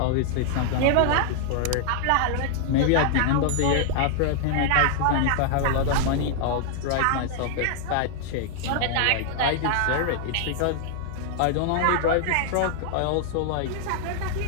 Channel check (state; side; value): different; both; correlation -0.01